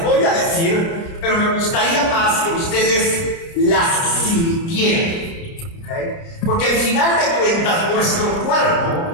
voy a decir, pero me gustaría más que ustedes las sintieran, ¿okay? Porque al final de cuentas nuestro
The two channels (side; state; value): right; late; 30 ms